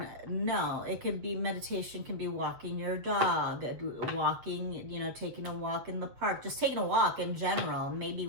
No, it could be, meditation can be walking your dog, walking, you know, taking a walk in the park, just taking a walk in general, maybe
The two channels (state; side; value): late; left; 7.9 ms